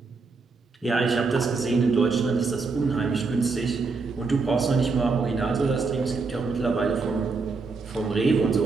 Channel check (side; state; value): left; quieter; 4.3 dB